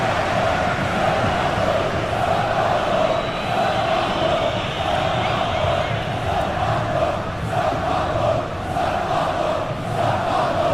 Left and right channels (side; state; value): both; identical; correlation 1.00